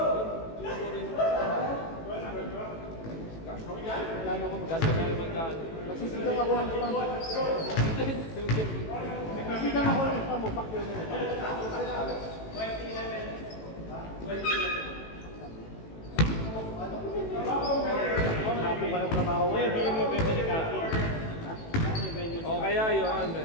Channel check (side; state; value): right; late; 18 ms